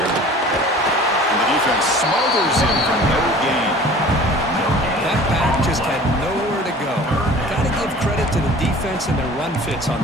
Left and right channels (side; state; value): both; normal; correlation 0.45